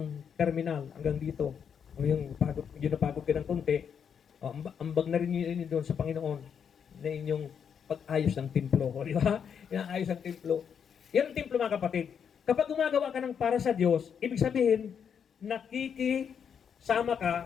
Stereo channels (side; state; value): right; quieter; 7.4 dB